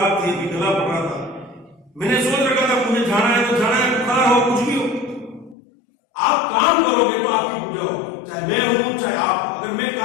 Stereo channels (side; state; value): right; drops out; at 5.6 s